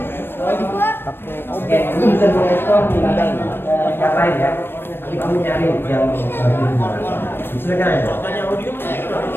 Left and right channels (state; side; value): late; right; 0.10 ms